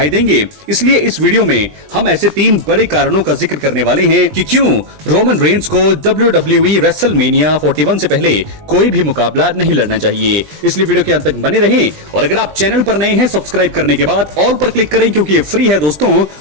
देंगे। इसलिए इस वीडियो में हम ऐसे 3 बड़े कारणों का जिक्र करने वाले हैं कि क्यों रोमन रेंस को डब्ल्यूडब्ल्यूई रेसलमेनिया 41 से पहले कोई भी मुकाबला नहीं लड़ना चाहिए। इसलिए वीडियो के अंत तक बने रहें और अगर आप चैनल पर नए हैं सब्सक्राइब करने के बाद ऑल पर क्लिक करें क्योंकि ये फ्री है दोस्तों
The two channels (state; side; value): late; left; 20 ms